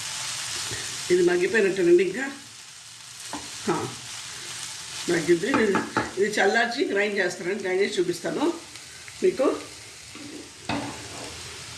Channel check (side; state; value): both; identical; correlation 1.00